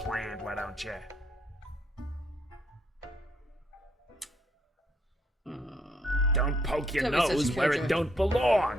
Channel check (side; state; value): both; normal; correlation 0.71